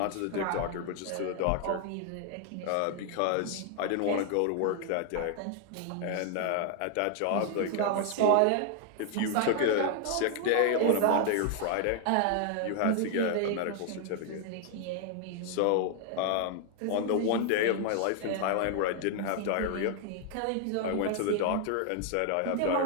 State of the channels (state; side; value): different; both; correlation 0.00